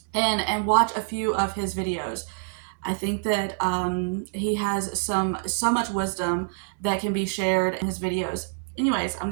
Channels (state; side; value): silent; left; digital silence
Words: and watch a few of his videos. I think that he has so much wisdom that can be shared in his videos. Anyways, I'm